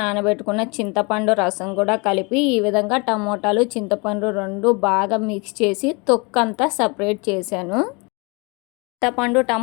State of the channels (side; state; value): right; quieter; 29.6 dB